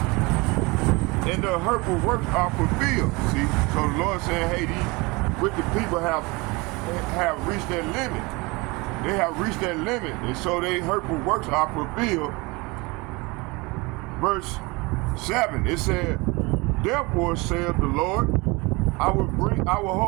and the hurtful works are fulfilled. See? So the Lord saying, hey, these wicked people have reached their limit. They have reached their limit, and so their hurtful works are fulfilled. Verse 7, it said, "Therefore saith the Lord, I will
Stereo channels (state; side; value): quieter; left; 25.5 dB